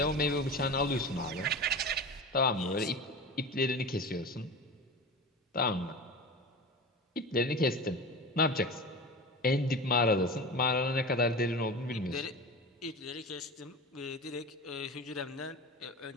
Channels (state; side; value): normal; both; correlation 0.30